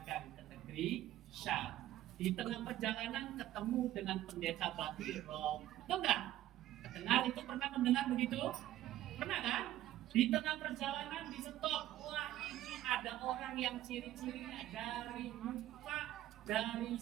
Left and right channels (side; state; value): left; quieter; 13.8 dB